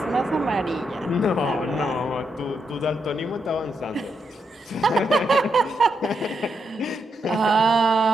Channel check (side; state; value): both; normal; correlation 0.82